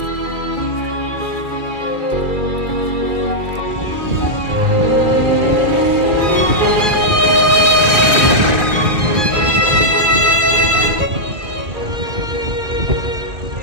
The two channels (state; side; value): late; left; 2.3 ms